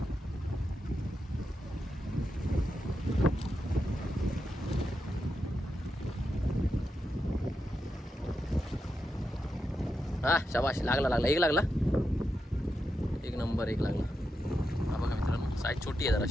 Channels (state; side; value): normal; both; correlation 0.87